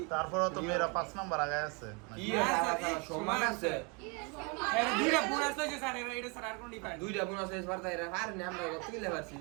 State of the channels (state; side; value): quieter; left; 32.1 dB